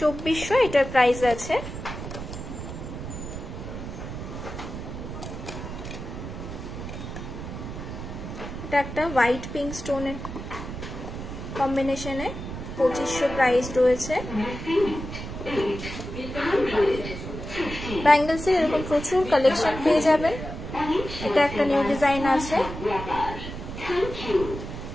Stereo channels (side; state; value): right; noise; rumble, 8 dB below the sound